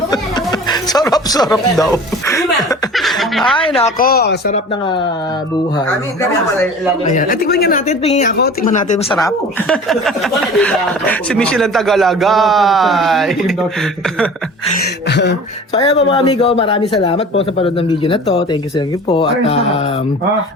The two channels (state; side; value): normal; both; correlation 0.40